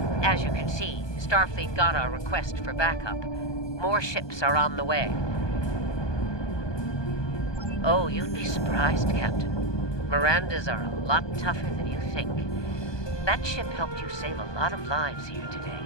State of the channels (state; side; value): late; right; 1.2 ms